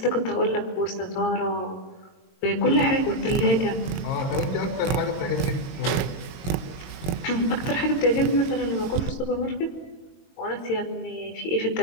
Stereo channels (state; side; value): late; right; 22 ms